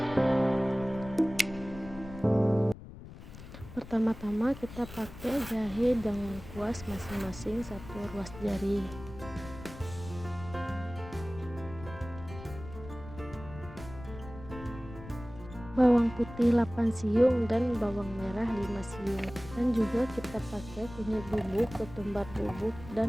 Pertama-tama kita pakai jahe dengan kuas masing-masing 1 ruas jari. Bawang putih 8 siung dan bawang merah 5 siung. Dan juga kita pakai kunyit bubuk, ketumbar bubuk,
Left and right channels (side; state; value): left; noise; rumble, 14 dB below the sound